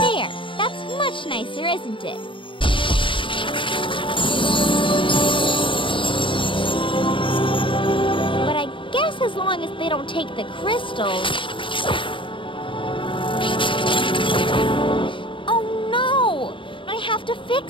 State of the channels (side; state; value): right; late; 0.25 ms